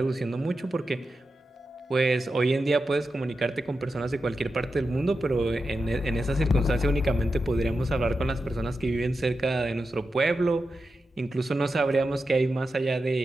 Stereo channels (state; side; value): normal; both; correlation 0.90